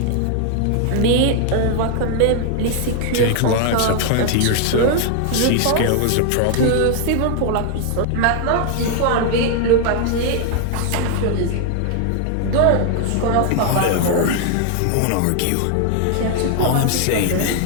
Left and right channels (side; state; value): both; different; correlation 0.00